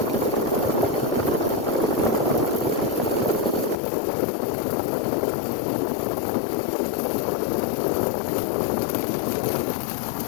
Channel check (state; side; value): drops out; right; at 3.8 s